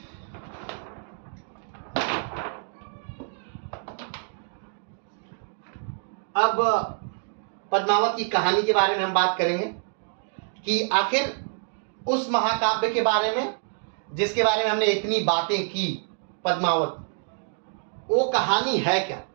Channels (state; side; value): silent; left; 56 dB below the other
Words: अब पद्मावत की कहानी के बारे में हम बात करेंगे कि आखिर उस महाकाव्य के बारे में जिसके बारे में हमने इतनी बातें की, पद्मावत, वो कहानी है क्या?